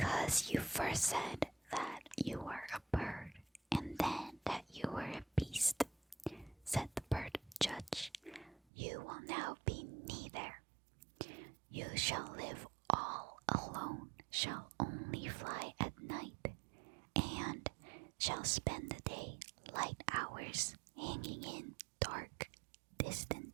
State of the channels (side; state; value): left; drops out; at 8.6 s